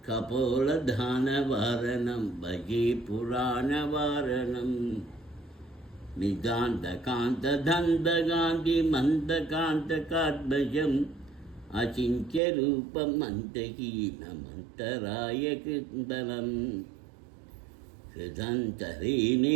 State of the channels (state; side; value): drops out; left; at 12.4 s